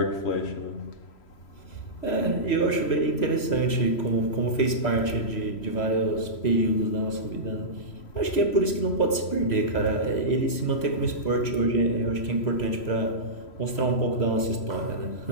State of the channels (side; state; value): right; late; 3.0 ms